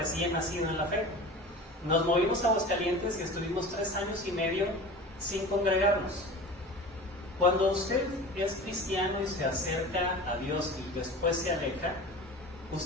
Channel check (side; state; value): both; normal; correlation 0.36